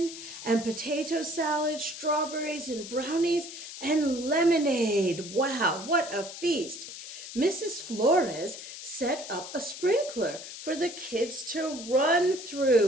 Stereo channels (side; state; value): left; noise; hiss, 11 dB below the sound